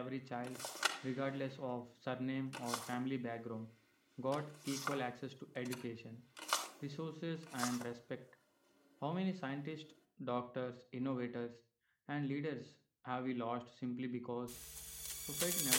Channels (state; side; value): identical; both; correlation 1.00